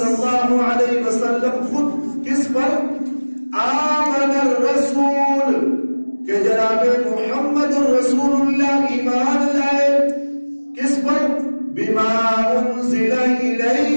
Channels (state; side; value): inverted; both; correlation -1.00